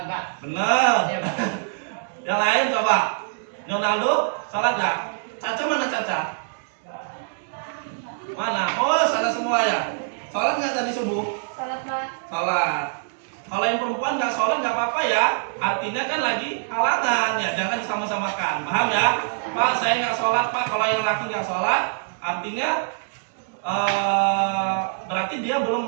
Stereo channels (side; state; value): left; silent; digital silence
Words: Bener. Yang lain coba. Ronaldo sholat nggak? Caca mana Caca? Mana? Oh sana semua ya. Sholat nggak tadi subuh? Salat, Pak. Sholat. Kalau yang perempuan nggak sholat nggak apa-apa ya. Artinya kan lagi halangan ya. Jangan disama-samakan. Paham ya? Pak saya nggak sholat Pak. Kalau yang laki nggak sholat, artinya berarti dia